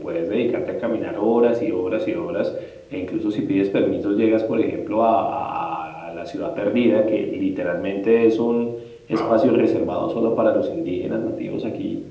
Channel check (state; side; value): identical; both; correlation 1.00